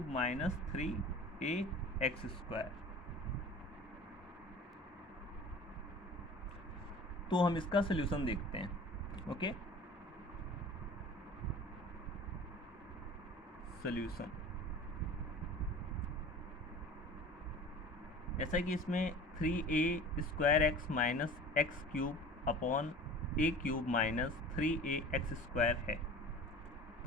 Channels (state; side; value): normal; both; correlation 0.40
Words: minus 3a x square. तो हम इसका सॉल्यूशन देखते हैं। ओके, सॉल्यूशन जैसा कि इसमें 3a square x minus x cube upon a cube minus 3a x square है,